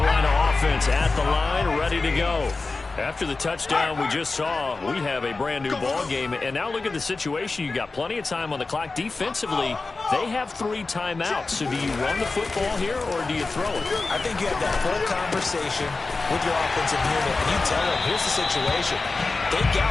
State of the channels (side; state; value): right; quieter; 3.7 dB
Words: offense at the line, ready to go. After the touchdown we just saw, we have a brand new ball game. And now look at the situation. You got plenty of time on the clock. Defensively, they have 3 timeouts. So do you run the football here or do you throw it? I think you have that full conversation with your offensive unit, and you tell them, here's the situation. They